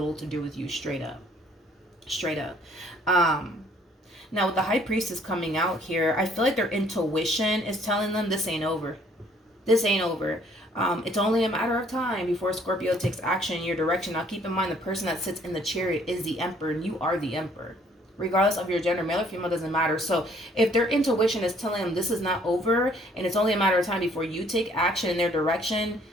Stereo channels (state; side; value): normal; both; correlation 0.61